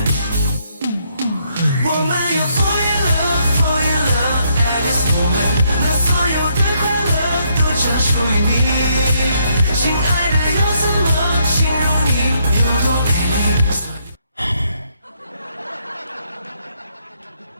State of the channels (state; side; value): inverted; both; correlation -0.73